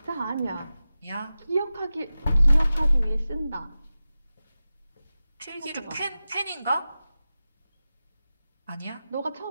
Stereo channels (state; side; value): inverted; both; correlation -0.94